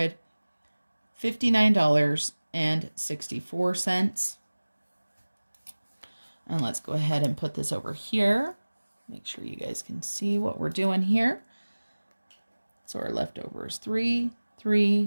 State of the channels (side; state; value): both; inverted; correlation -1.00